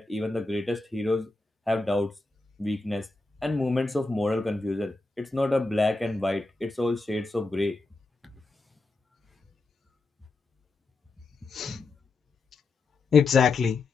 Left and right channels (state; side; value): quieter; right; 3.4 dB